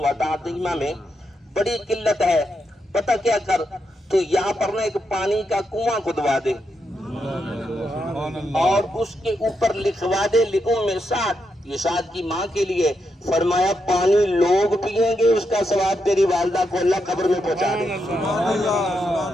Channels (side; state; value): both; normal; correlation 0.83